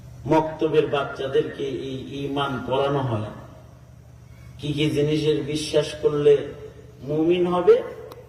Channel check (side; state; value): both; identical; correlation 1.00